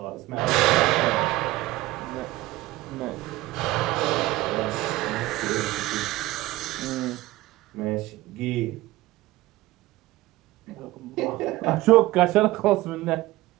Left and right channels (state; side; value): quieter; left; 18.2 dB